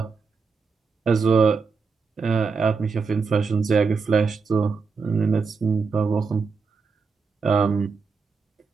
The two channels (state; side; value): quieter; left; 5.0 dB